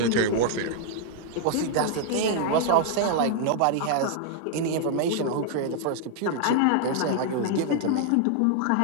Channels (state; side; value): different; both; correlation 0.00